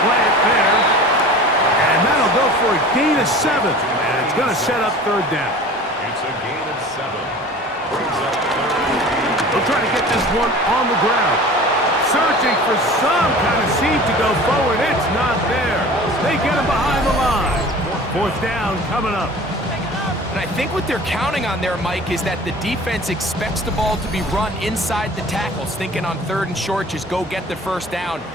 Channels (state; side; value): normal; both; correlation 0.41